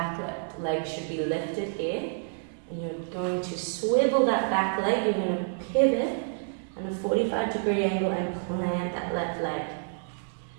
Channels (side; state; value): left; silent; digital silence